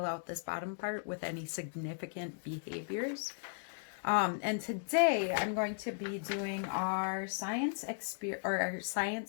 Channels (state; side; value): silent; right; digital silence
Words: out this bottom part with any significant behaviors. And today I'm going to be doing our science